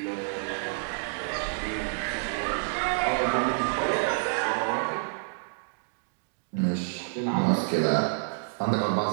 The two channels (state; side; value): silent; left; digital silence